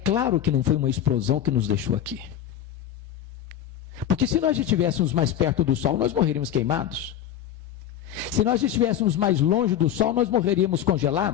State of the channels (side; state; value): right; quieter; 10.6 dB